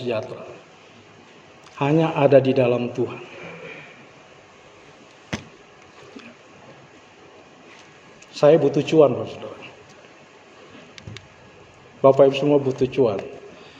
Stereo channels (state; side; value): identical; both; correlation 1.00